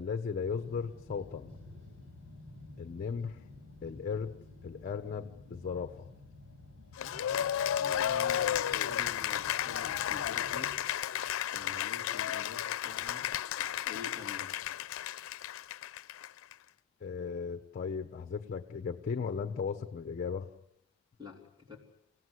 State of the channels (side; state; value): right; quieter; 8.4 dB